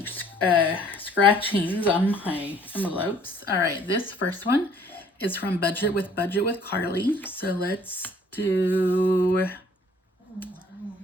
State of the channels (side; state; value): both; normal; correlation 0.57